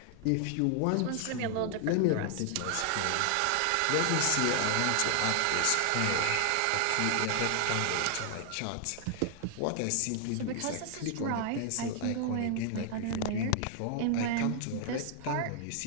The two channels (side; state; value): both; different; correlation 0.00